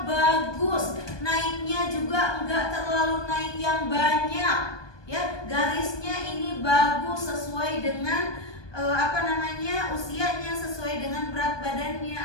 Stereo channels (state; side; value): late; right; 1.2 ms